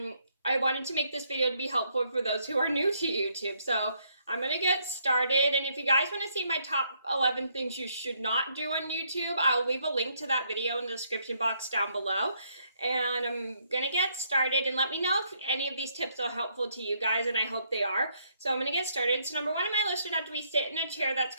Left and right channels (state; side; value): inverted; both; correlation -0.72